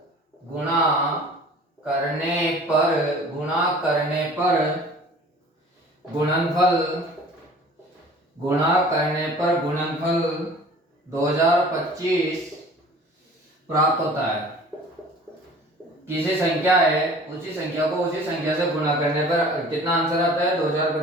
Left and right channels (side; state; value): both; normal; correlation 0.47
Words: गुणनफल 2025 प्राप्त होता है। किसी संख्या है, उसी संख्या को उसी संख्या से गुणा करने पर कितना आंसर आता है?